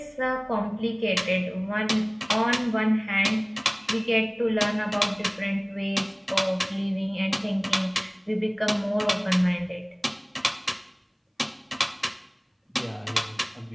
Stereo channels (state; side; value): identical; both; correlation 1.00